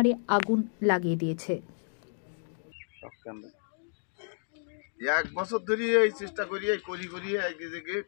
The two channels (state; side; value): silent; right; digital silence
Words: আগুন লাগিয়ে দিয়েছে। 1 বছর ধরে এই চেষ্টা করি একদিকে